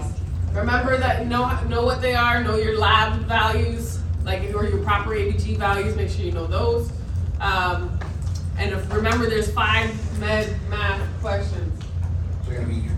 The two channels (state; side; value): identical; both; correlation 1.00